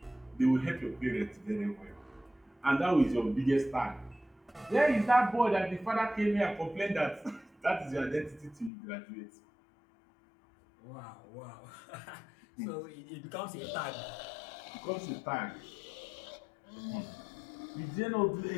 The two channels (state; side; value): drops out; right; at 8.7 s